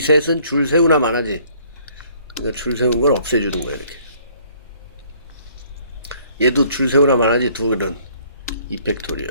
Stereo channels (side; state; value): both; inverted; correlation -0.59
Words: 줄 세우나 마나지? 그러니까 줄 세운 걸 없애주는 거야, 이렇게. 얘도 줄 세우나 마나지, 둘은.